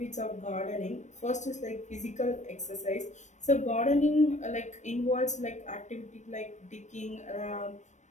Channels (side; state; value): right; late; 0.34 ms